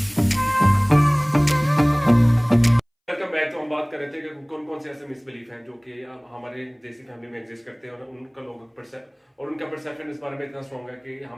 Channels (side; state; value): both; identical; correlation 1.00